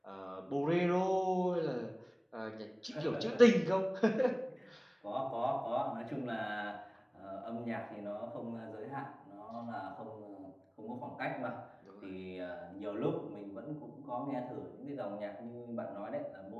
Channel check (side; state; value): both; identical; correlation 1.00